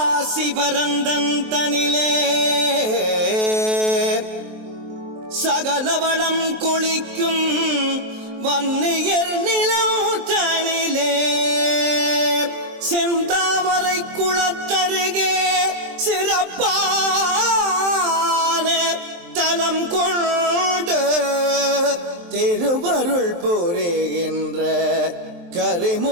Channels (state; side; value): late; left; 23 ms